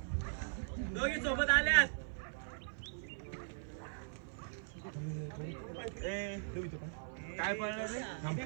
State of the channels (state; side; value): silent; left; 51 dB below the other